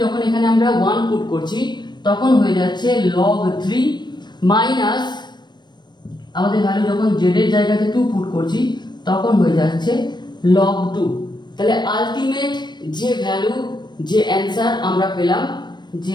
যখন এখানে আমরা 1 পুট করছি তখন হয়ে যাচ্ছে log 3 মাইনাস আমাদের ভ্যালু যখন জেড এর জায়গাতে 2 পুট করছি তখন হয়ে যাচ্ছে log 2। তাহলে আলটিমেট যে ভ্যালু যে অ্যানসার আমরা পেলাম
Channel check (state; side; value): late; right; 0.21 ms